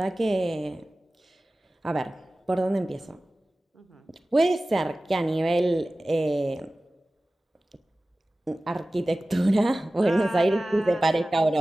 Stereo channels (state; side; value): normal; both; correlation 0.97